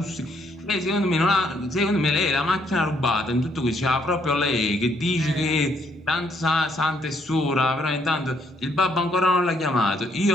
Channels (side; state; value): both; normal; correlation 0.70